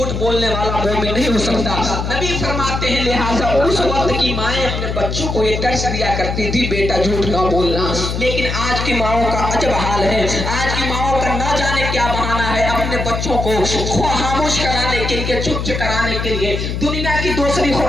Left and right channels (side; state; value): left; noise; hum, 3 dB below the sound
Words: بولنے والا مومن نہیں ہو سکتا. نبی فرماتے ہیں لہٰذا اس وقت کی مائیں اپنے بچوں کو یہ درس دیا کرتی تھی بیٹا جھوٹ نہ بولنا. لیکن آج کی ماؤں کا عجب حال ہے. آج کی ماؤں کا نہ جانے کیا بہانہ ہے اپنے بچوں کو خاموش کرانے کے لیے, چپ کرانے کے لیے دنیا کی دوسری